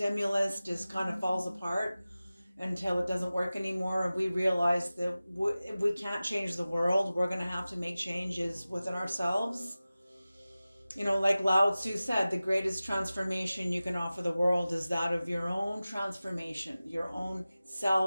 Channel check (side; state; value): both; inverted; correlation -0.97